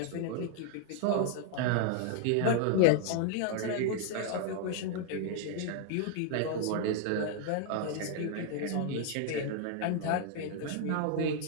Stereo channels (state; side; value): different; both; correlation 0.00